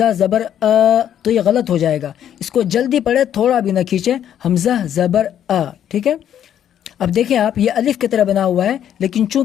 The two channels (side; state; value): right; quieter; 10.1 dB